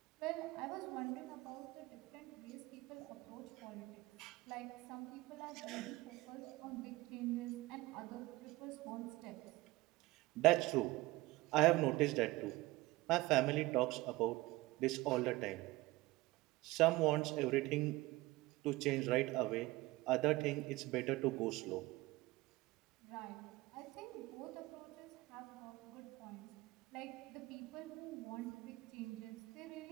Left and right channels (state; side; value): quieter; left; 20.2 dB